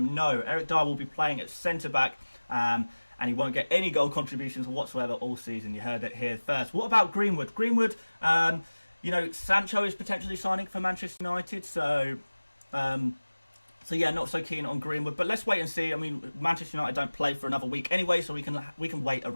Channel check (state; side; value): inverted; both; correlation -1.00